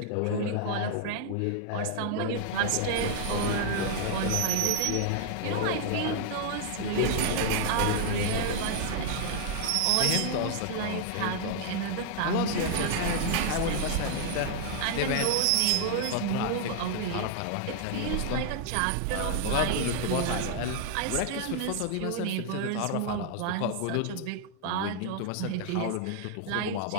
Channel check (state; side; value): different; both; correlation 0.00